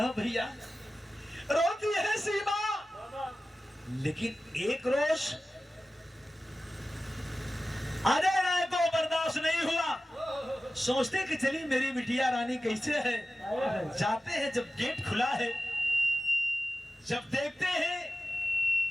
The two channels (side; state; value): both; normal; correlation 0.94